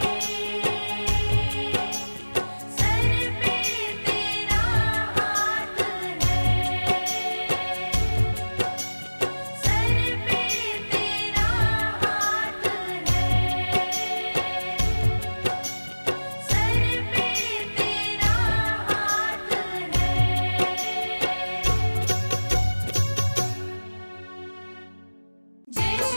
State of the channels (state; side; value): inverted; both; correlation -1.00